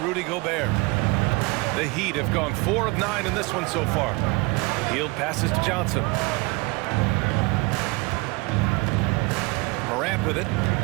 Gobert. The Heat have gone 4 of 9 in this one so far. Hield passes to Johnson. Morant with it.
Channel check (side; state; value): left; quieter; 25.9 dB